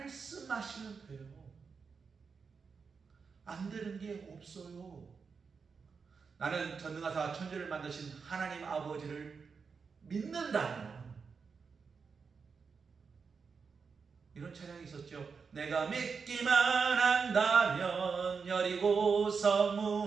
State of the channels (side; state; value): left; quieter; 5.4 dB